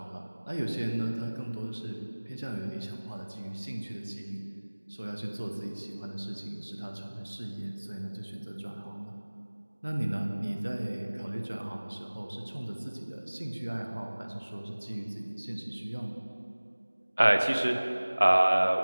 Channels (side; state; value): both; inverted; correlation -1.00